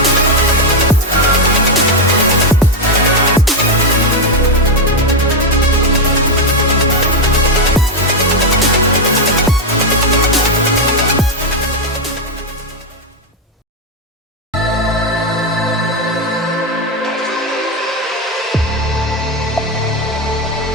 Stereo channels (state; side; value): normal; both; correlation 0.04